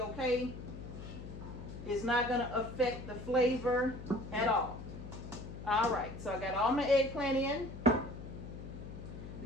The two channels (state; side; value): noise; left; hum, 11 dB below the sound